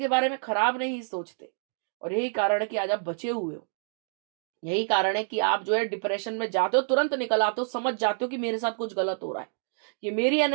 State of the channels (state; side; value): silent; left; digital silence